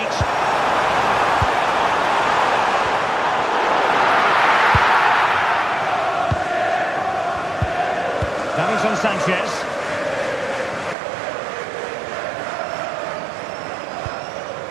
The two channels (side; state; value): left; drops out; at 11.0 s